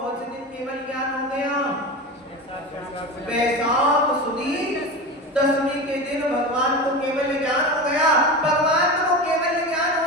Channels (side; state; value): both; normal; correlation 0.26